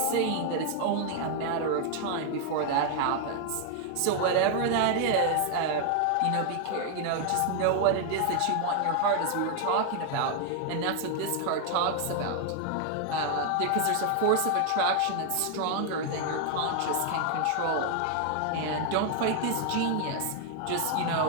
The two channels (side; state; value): both; different; correlation 0.00